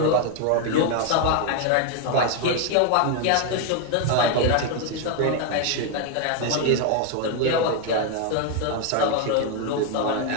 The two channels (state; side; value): different; both; correlation 0.01